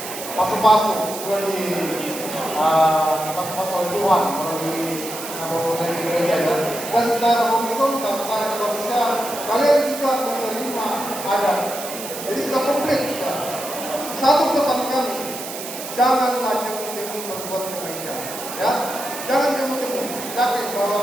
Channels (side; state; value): right; noise; hiss, 9 dB below the sound